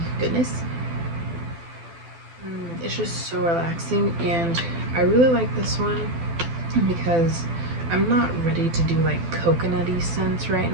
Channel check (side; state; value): left; late; 12 ms